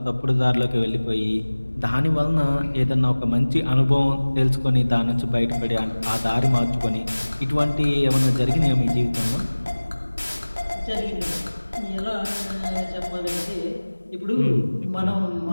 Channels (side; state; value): both; inverted; correlation -1.00